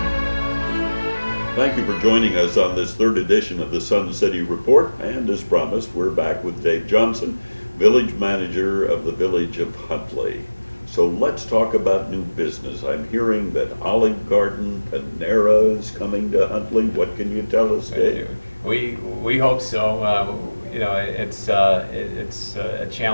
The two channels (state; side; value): inverted; both; correlation -1.00